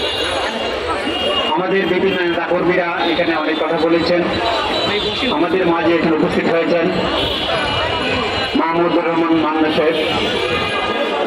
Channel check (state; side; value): identical; both; correlation 1.00